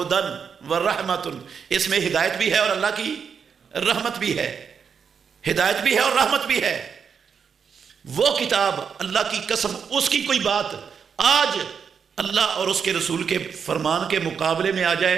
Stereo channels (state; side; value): quieter; left; 6.6 dB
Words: ورحمۃ، اس میں ہدایت بھی ہے اور اللہ کی رحمت بھی ہے. ہدایت بھی ہے اور رحمت بھی ہے. وہ کتاب، اللہ کی قسم، اس کی کوئی بات آج اللہ اور اس کے رسول کے فرمان کے مقابلے میں آ جائے